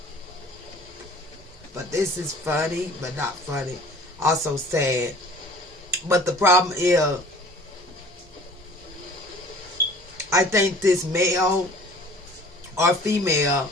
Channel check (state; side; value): normal; both; correlation 0.48